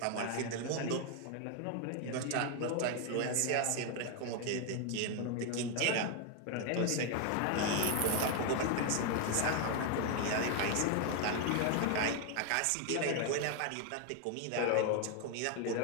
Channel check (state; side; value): different; both; correlation 0.01